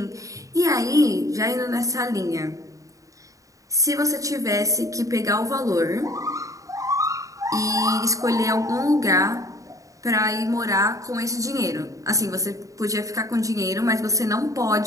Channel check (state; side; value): late; left; 0.16 ms